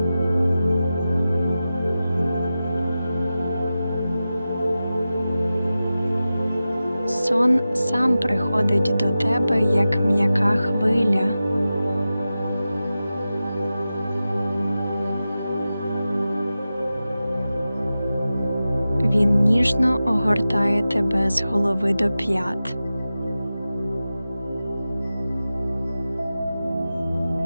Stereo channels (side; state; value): both; inverted; correlation -0.94